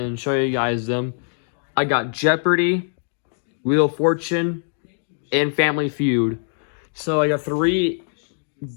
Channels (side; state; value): right; silent; digital silence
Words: show you guys them. I got Jeopardy, Wheel of Fortune, and Family Feud. So I got 3